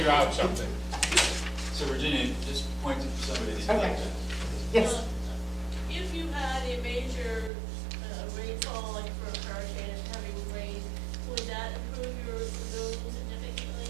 out something. So Virginia, just point to somebody that you Okay. like. Yes. If you had a major rainfall, like for a hurricane and heavy rain, would that improve your lagoon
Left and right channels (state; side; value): drops out; left; at 7.5 s